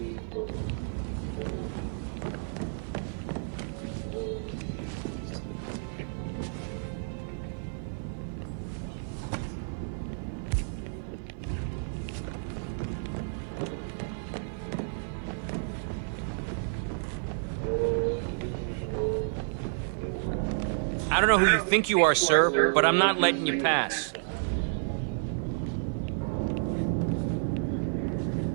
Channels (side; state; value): left; silent; 57 dB below the other